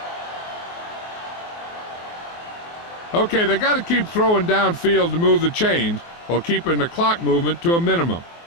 Okay, they got to keep throwing downfield to move the chains while keeping the clock movement to a minimum.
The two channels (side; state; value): right; late; 24 ms